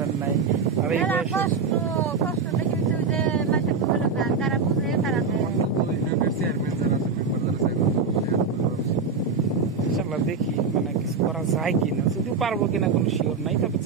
নাই, আর এই কষ্ট কষ্ট দেখি যে মাসে গুলো যারা বুঝে তারা এগুলা দেখি মানে কিছু করা যায় কিনা, যদিও পারবো কিনা কোনো শিওর নাই, তবে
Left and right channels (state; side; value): quieter; left; 4.9 dB